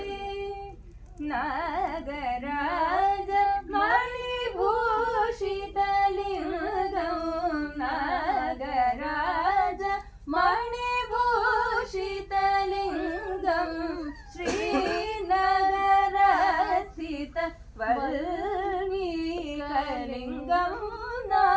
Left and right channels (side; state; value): both; identical; correlation 1.00